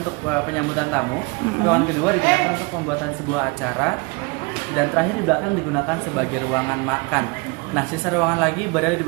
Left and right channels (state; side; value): quieter; left; 28.6 dB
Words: untuk penyambutan tamu, ruangan kedua digunakan untuk pembuatan sebuah acara, dan terakhir di belakang digunakan sebagai ruangan makan. Nah, sisa ruangan lagi berada di